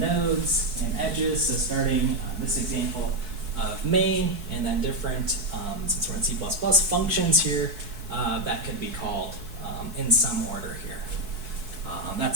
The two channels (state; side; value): late; left; 4.6 ms